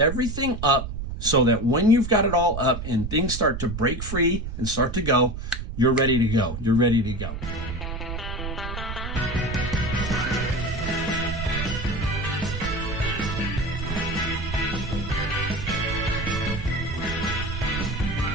up, so that when you've got it all up and things start to break free and start to go, you're ready to go. You're ready to go.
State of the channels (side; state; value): right; noise; rumble, 6 dB below the sound